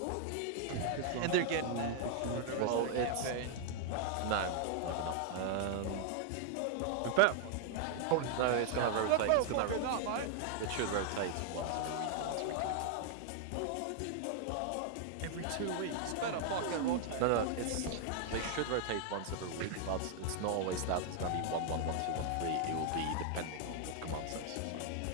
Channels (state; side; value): different; both; correlation 0.00